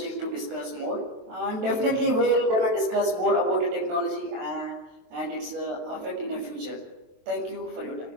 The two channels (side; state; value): left; late; 23 ms